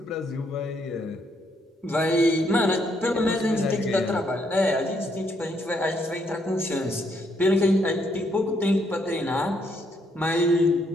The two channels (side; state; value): both; normal; correlation 0.73